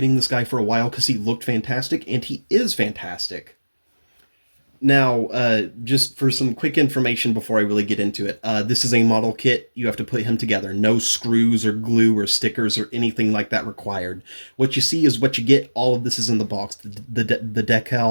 this guy for a while because he looked fantastic, and he is fantastic. Now, just for some quick information before I really get into it, this is a model kit. You have to put him together. No screws or glue or stickers or anything like that required. What you see is what you get. All of this is in the box. The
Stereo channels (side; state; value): both; inverted; correlation -1.00